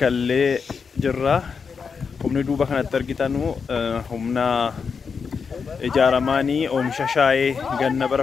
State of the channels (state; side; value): quieter; right; 5.7 dB